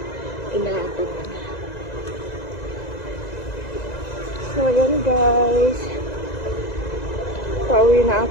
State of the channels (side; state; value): right; late; 2.0 ms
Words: inaabot. So ayan guys. Pauwi na